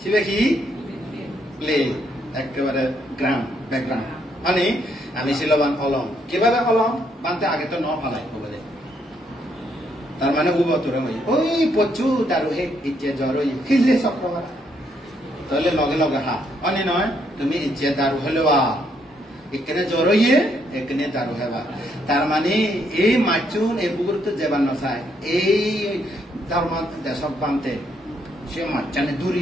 শিবে কি প্লে একেবারে গ্রাউন্ড ব্যাকগ্রাউন্ড মানে আমি শিলবান অলং কিভাবে অলং বানতে আগে তো ন ফালাই বলে তার মানে উবতরে ওই পচু তার হে ইচ্ছে জ্বর খিলে চক্রবার তাহলে লগে লগে হা মানে নয় তুমি ইচ্ছে দারু হলেওয়া এখানে জ্বর হইয়ে এখানে দারু হেবা তার মানে এই মাচুন এই পুকুর তো যেবার নচাই এই ধর্ম দেশক বানতে সে মাচানে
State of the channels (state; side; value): normal; both; correlation 0.73